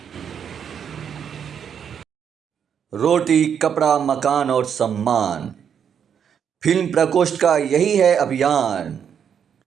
रोटी, कपड़ा, मकान और सम्मान, फिल्म प्रकोष्ठ का यही है अभियान।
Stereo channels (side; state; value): left; quieter; 7.9 dB